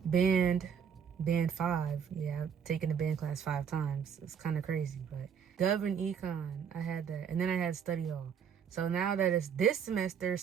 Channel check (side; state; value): left; quieter; 7.5 dB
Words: band 5. Yeah, I've taken the band class 5 times. It's kind of crazy, but Gov and Econ, I had that, and then I had study hall. So now that it's this